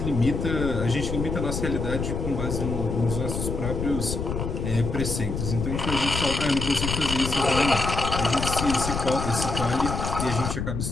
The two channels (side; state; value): left; noise; rumble, 3 dB below the sound